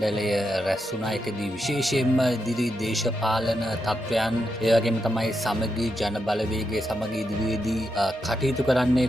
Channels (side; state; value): both; normal; correlation 0.84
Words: රැස් වුණා. ඒකදී විශේෂයෙන්ම ඉදිරි දේශපාලන තත්ත්වයන් ඒ වගේම තමයි සමගි ජන බලවේගයේ සමග ඉදිරියේදී කටයුතු කරන්නේ